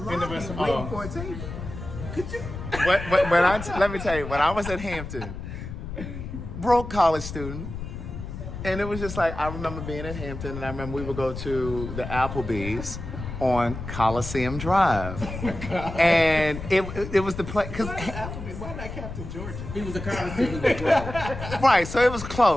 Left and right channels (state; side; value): noise; left; rumble, 8 dB below the sound